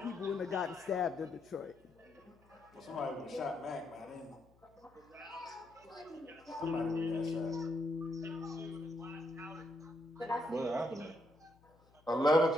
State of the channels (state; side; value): noise; left; hum, 29 dB below the sound